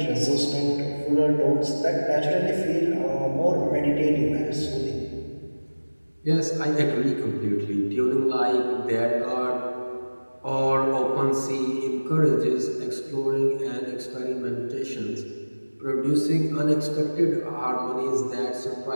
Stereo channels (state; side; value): inverted; both; correlation -1.00